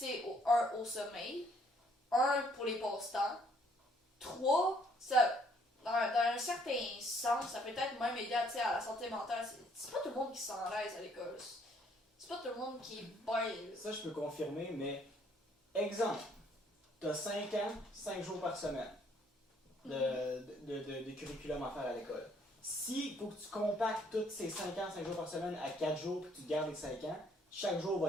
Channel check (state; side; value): normal; both; correlation 0.65